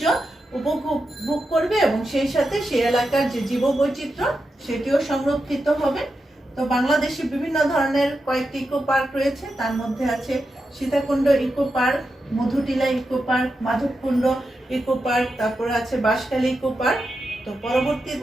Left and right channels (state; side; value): normal; both; correlation 0.88